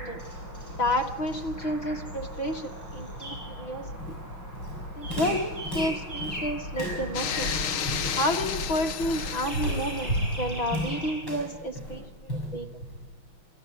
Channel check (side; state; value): right; late; 6.4 ms